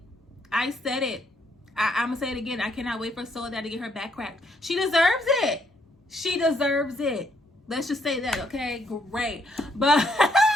I'm gonna say it again. I cannot wait for Soledad to get her back cracked. She deserves it. Let's just say that, okay? Great. But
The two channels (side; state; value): both; normal; correlation 0.72